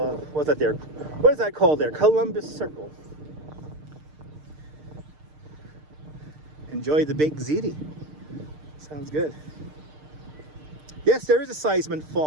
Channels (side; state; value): left; late; 6.6 ms